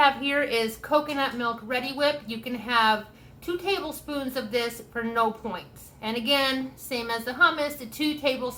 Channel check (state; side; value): identical; both; correlation 1.00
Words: here is coconut milk Ready Whip. You can have 2 tablespoons of this for no points. And again, same as the hummus, the 2